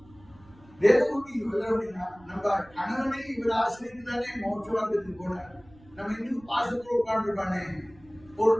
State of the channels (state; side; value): noise; right; rumble, 26 dB below the sound